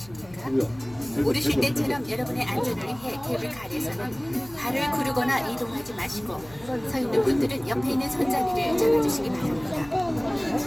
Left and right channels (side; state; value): left; noise; hum, 22 dB below the sound